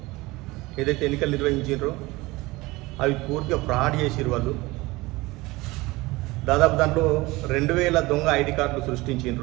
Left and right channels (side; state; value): left; quieter; 21.3 dB